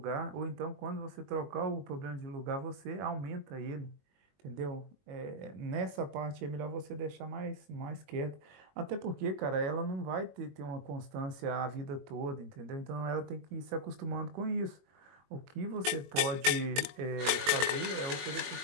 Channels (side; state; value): left; late; 21 ms